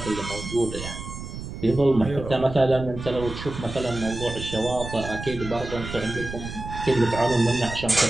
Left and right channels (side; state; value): right; noise; rumble, 9 dB below the sound